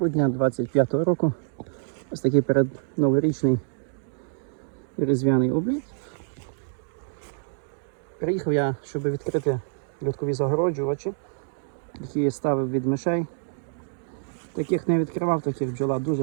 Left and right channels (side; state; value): left; silent; digital silence